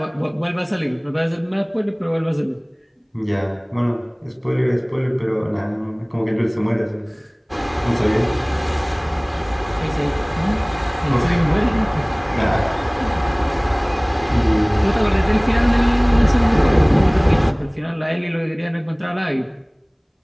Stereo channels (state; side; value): identical; both; correlation 1.00